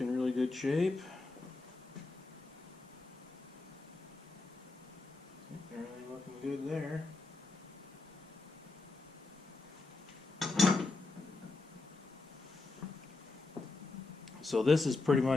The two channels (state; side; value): quieter; right; 3.4 dB